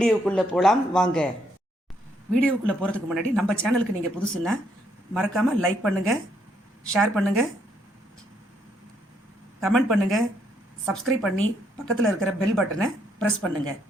போகலாம் வாங்க. வீடியோக்குள்ளே போகிறதுக்கு முன்னாடி நம்ம சேனலுக்கு நீங்கள் புதுசுன்னா மறக்காமல் லைக் பண்ணுங்கள், ஷேர் பண்ணுங்கள், கமெண்ட் பண்ணுங்கள், சப்ஸ்கிரைப் பண்ணி பக்கத்தில் இருக்கிற பெல் பட்டனை ப்ரெஸ் பண்ணுங்கள்.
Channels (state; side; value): normal; both; correlation 0.73